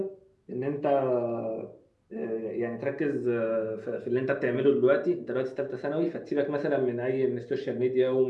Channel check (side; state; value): both; identical; correlation 1.00